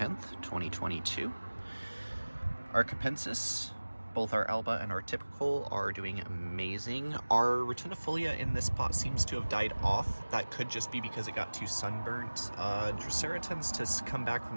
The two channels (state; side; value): inverted; both; correlation -1.00